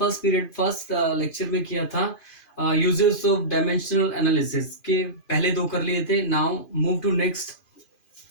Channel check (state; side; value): late; right; 2.4 ms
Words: period first lecture में किया था uses of dimensional analysis के पहले दो कर लिए थे. Now move to next.